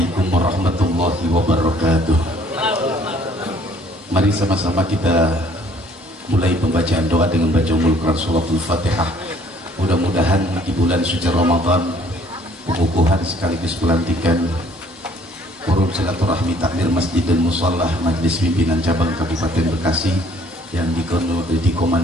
warahmatullahi wabarakatuh. Mari sama-sama kita mulai pembacaan doa dengan baca Ummul Quran suratul Fatihah. Mudah-mudahan di bulan suci Ramadan pengukuhan sekaligus pelantikan forum silaturahmi takmir masjid dan musholah Majelis Pimpinan Cabang Kabupaten Bekasi yang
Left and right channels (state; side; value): normal; both; correlation 0.60